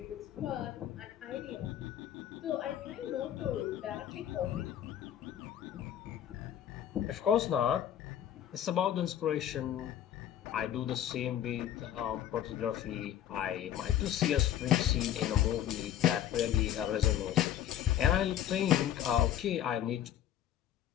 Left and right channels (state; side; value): quieter; right; 11.0 dB